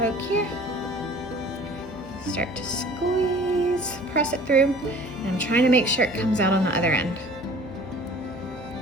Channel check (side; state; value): left; noise; hum, 15 dB below the sound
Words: here, start to squeeze, press it through, and I'm trying to make sure it comes out on the other end.